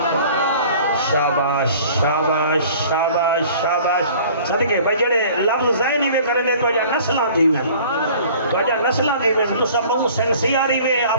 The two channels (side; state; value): both; inverted; correlation -0.49